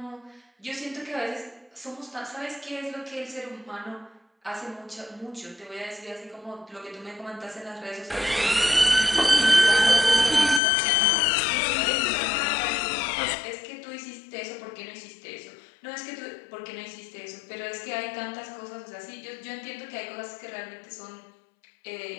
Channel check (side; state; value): right; drops out; at 10.6 s